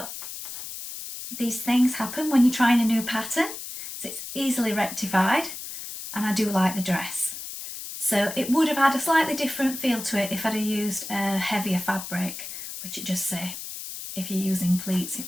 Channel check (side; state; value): left; noise; hiss, 9 dB below the sound